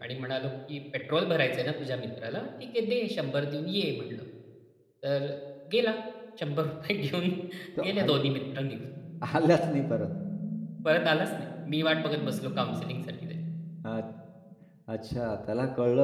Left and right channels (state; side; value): identical; both; correlation 1.00